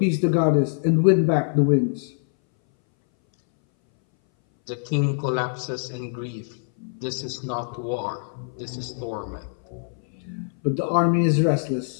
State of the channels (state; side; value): silent; right; 61 dB below the other